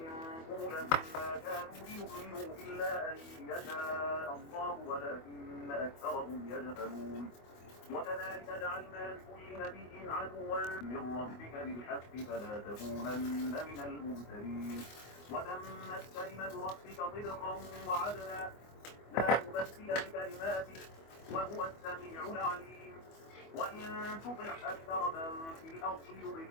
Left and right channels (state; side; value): late; right; 24 ms